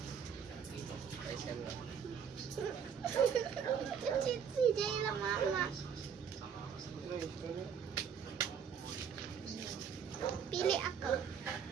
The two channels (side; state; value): left; quieter; 7.4 dB